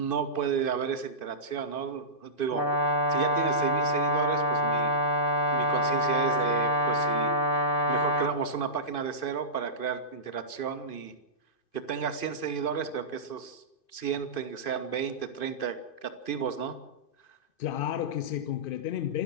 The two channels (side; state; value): right; late; 2.5 ms